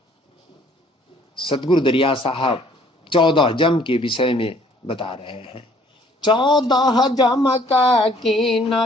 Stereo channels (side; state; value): both; normal; correlation 0.59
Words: सतगुरु दरिया साहब 14 जम के विषय में बता रहे हैं। 14 जम का कीन